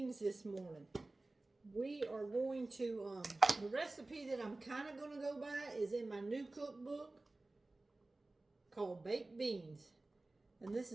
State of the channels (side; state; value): left; quieter; 3.0 dB